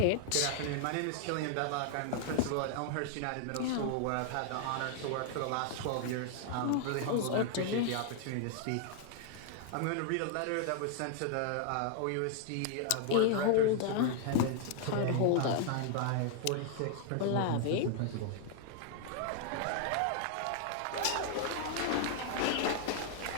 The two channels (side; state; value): both; different; correlation 0.00